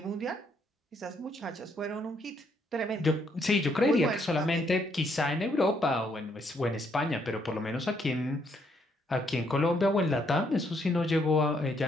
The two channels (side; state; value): both; normal; correlation 0.72